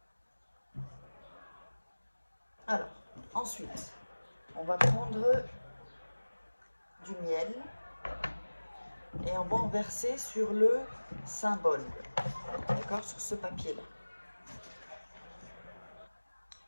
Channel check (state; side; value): inverted; both; correlation -1.00